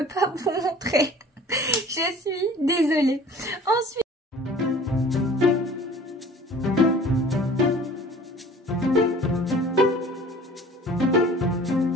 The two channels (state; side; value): normal; both; correlation 0.47